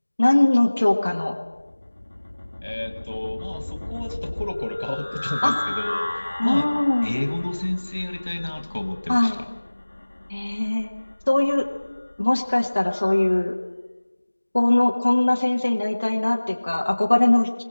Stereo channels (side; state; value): both; inverted; correlation -1.00